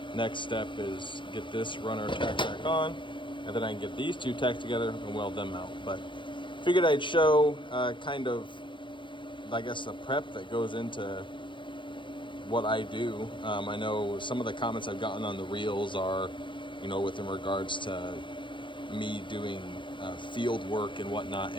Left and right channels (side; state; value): right; late; 0.23 ms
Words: Next step is get this runner tacked back on, and then I can get these two tacked together and weld them out. But figured I'd show kind of, I guess, the prep that goes into what I do. I know some of the comments I've gotten on the reels are, you know, within regards to me doing field work and whatnot,